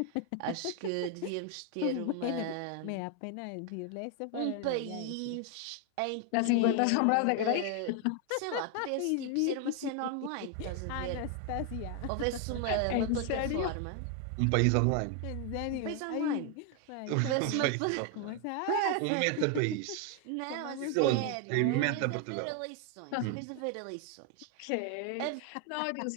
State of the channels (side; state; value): both; different; correlation 0.01